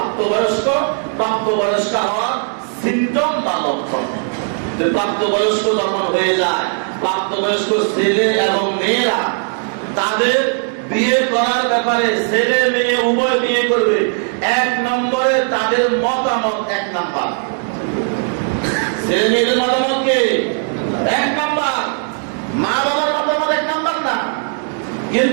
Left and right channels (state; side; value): silent; left; 58 dB below the other